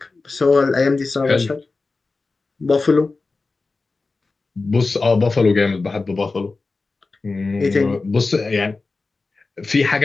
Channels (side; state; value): right; quieter; 3.8 dB